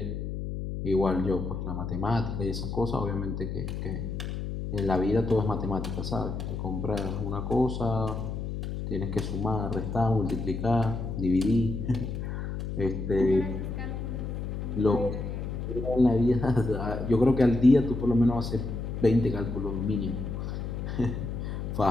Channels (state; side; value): noise; left; hum, 5 dB below the sound